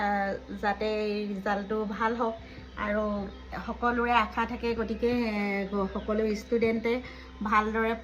যাতে ৰিজাল্টটো ভাল হওক আৰু সকলোৰে আশা থাকে গতিকে সকলো ষ্টুডেণ্টে ভালদৰে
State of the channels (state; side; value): identical; both; correlation 1.00